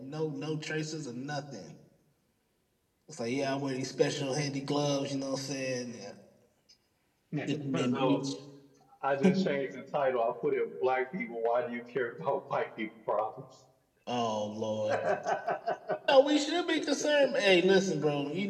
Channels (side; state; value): both; identical; correlation 1.00